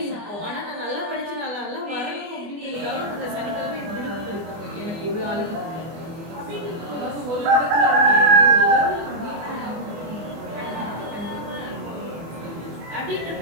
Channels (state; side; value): late; left; 24 ms